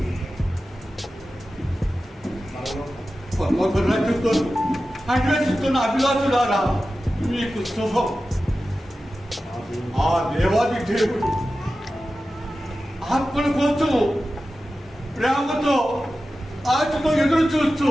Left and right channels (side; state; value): both; normal; correlation 0.94